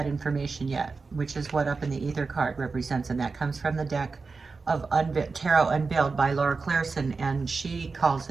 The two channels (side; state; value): left; quieter; 4.4 dB